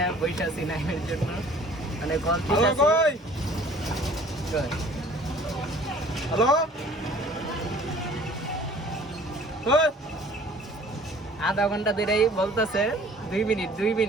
বসে আছি নাইমের জন্য, মানে আধা ঘন্টা ধরেই বলতেছে 2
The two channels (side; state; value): both; normal; correlation 0.51